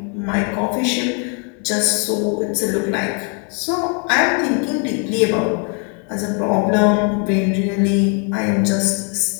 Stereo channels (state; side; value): quieter; right; 38.9 dB